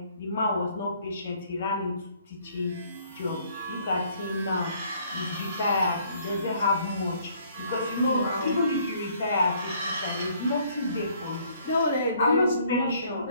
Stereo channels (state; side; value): inverted; both; correlation -0.62